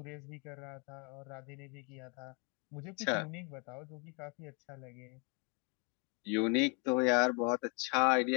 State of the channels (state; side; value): quieter; right; 33.9 dB